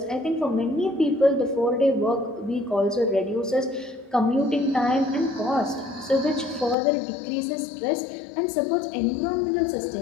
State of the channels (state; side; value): drops out; right; at 6.8 s